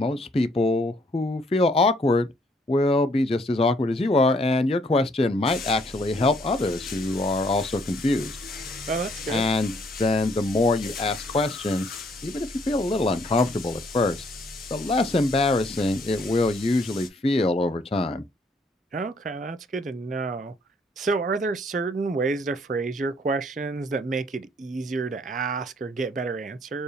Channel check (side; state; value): both; normal; correlation 0.66